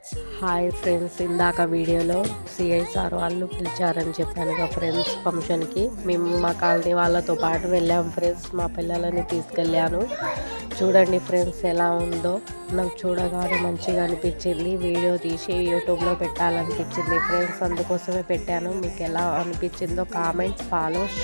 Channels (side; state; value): both; inverted; correlation -1.00